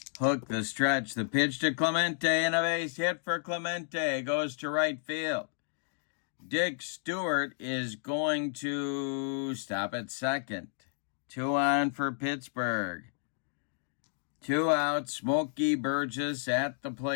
Hook, the stretch, the pitch to Clemente, and a base hit for Clemente. Goes to right field. Dick Stewart is going to stop at second. 2 on for Pittsburgh. 2 out, Smokey Burgess at the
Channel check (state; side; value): silent; right; digital silence